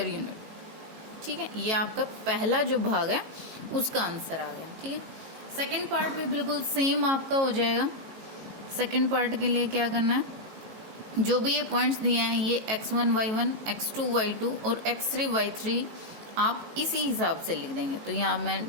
यूनिट। ठीक है, ये आपका पहला जो भाग है उसका आंसर आ गया। ठीक है, सेकंड पार्ट भी बिल्कुल सेम आपका हो जाएगा। सेकंड पार्ट के लिए क्या करना है, जो भी ये पॉइंट्स दिए हैं ये x1 y1 x2 y2 और x3 y3 आप इसी हिसाब से लिख देंगे। तो यहाँ मैं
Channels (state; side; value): late; left; 18 ms